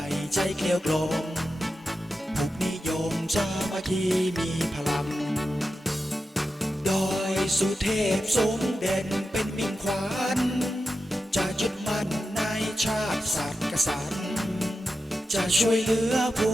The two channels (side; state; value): both; normal; correlation 0.91